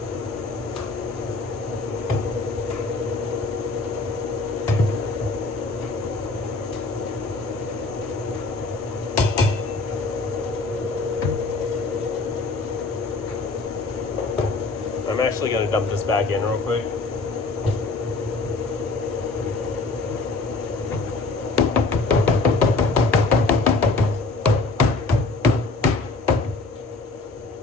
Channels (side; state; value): right; quieter; 3.6 dB